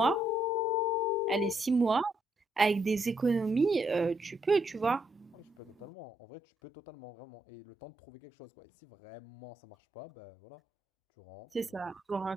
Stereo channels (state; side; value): normal; both; correlation 0.77